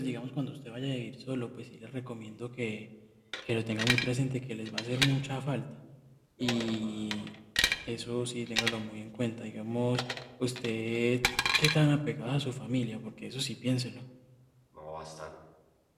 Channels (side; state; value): both; identical; correlation 1.00